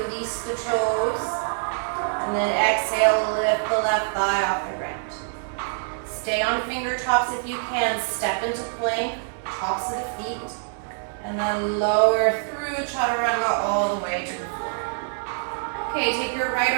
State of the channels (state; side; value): silent; left; 62 dB below the other